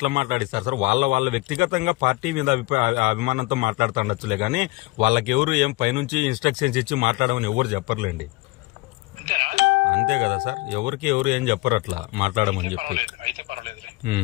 మాట్లాడిస్తారు సార్? వాళ్ళ వ్యక్తిగతంగా పార్టీ మీద అభిమానంతో మాట్లాడుతుండొచ్చులే కానీ వాళ్ళకి ఎవరు ఏం పైనుంచి ఇన్స్ట్రక్షన్స్ ఇచ్చి మాట్లాడమని ఎవరు చెప్పర్లేండి. అంతేనా? అంతే కదా సార్, ఎవరు ఏం చెప్పరు అట్లా మాట్లాడమని చెప్పి. అయితే పర్వాలేదు,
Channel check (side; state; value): right; quieter; 22.3 dB